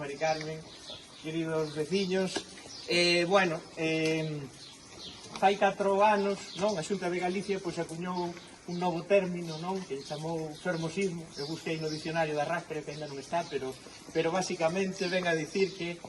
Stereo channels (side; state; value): both; identical; correlation 1.00